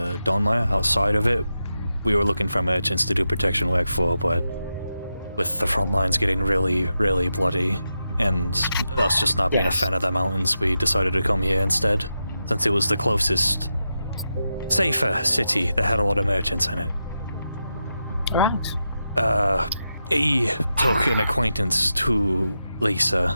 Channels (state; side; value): inverted; both; correlation -0.88